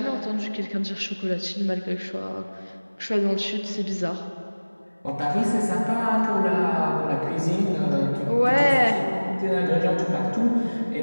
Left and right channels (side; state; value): both; inverted; correlation -1.00